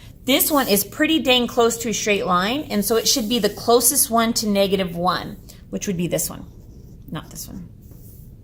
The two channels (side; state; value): both; identical; correlation 1.00